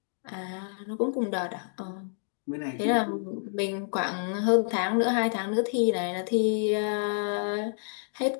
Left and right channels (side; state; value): right; silent; digital silence